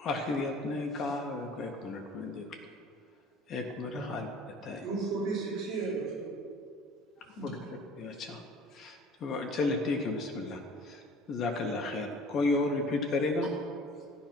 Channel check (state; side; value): normal; both; correlation 0.47